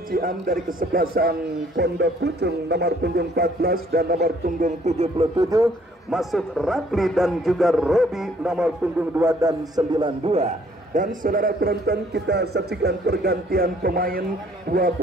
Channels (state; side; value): normal; both; correlation 0.61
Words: Ciam dari kesebelasan Pondok Pucung nomor punggung 14 dan nomor punggung 77 masuk Rapli dan juga Robi nomor punggung 2 dan 92. Dan saudara penonton, kita saksikan pergantian pemain. Dua